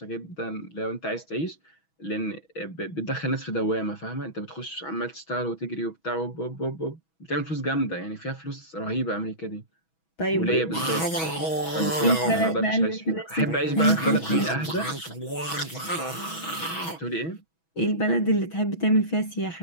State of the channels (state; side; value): late; right; 6.2 ms